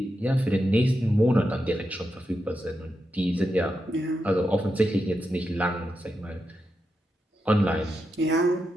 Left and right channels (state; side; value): normal; both; correlation 0.87